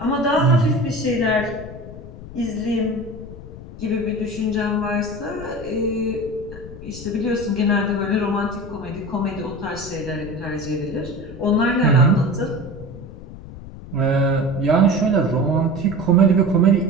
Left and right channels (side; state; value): left; noise; rumble, 14 dB below the sound